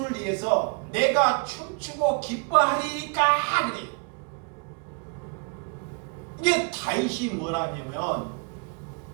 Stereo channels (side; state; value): left; quieter; 35.2 dB